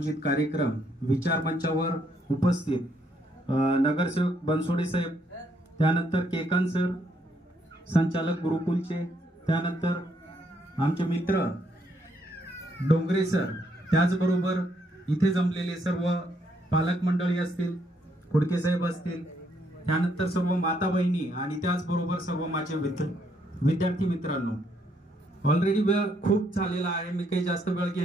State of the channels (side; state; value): both; normal; correlation 0.73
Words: कार्यक्रम विचार मंचावर उपस्थित नगरसेवक बनसोडे साहेब, त्यानंतर केकान सर संचालक गुरुकुलचे, त्यानंतर आमचे मित्र डोंगरे सर, त्याचबरोबर इथे जमलेले सर्व पालक मंडळी असतील, कुडके साहेब असतील, त्यानंतर सर्व माता बहिणी आणि त्याचबरोबर सर्व माझे विद्यार्थी मित्रांनो, ऑलरेडी वेळ खूप झालेला आहे, मी काही जास्त वेळ